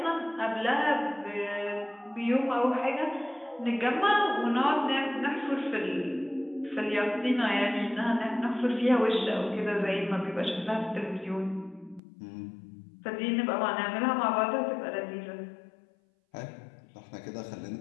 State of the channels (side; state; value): right; drops out; at 12.0 s